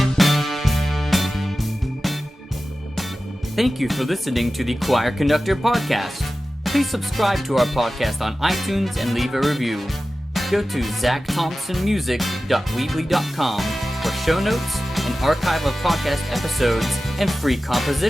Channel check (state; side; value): normal; both; correlation 0.95